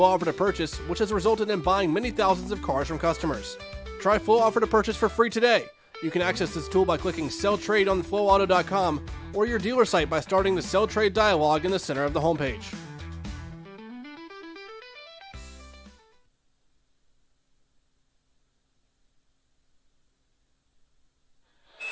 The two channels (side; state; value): both; identical; correlation 1.00